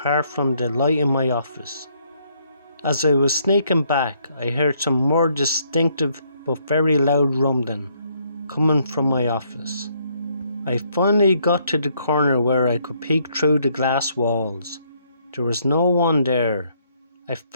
from the light in my office. As I was sneaking back, I heard some more distinctive but very loud rumbling coming from my office. I finally got to the corner where I could peek through the glass walls. There was no one there. I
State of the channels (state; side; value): inverted; both; correlation -0.70